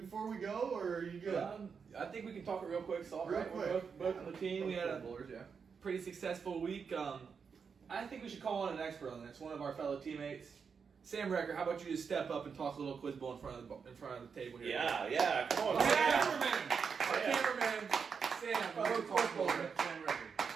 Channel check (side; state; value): left; quieter; 6.0 dB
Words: we go, or are you good? I think we can talk it real quick. It's all Real right. quick. We're both on the team. We had a Bowlers, yeah. pretty successful week. I think we should call on an expert on this. One of our fellow teammates, Sam Recker. How about you just step up and talk a little quiz bowl in front of the table here? Yeah, come on. Our Sam. cameraman, Sam. Fellow quiz bowler, Sam